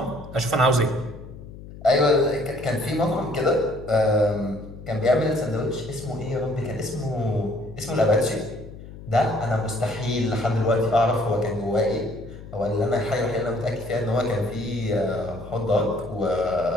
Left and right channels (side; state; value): left; noise; hum, 15 dB below the sound